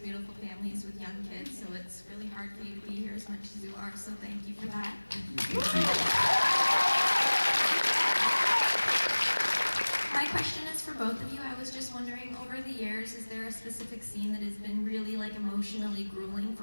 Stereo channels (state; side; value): inverted; both; correlation -1.00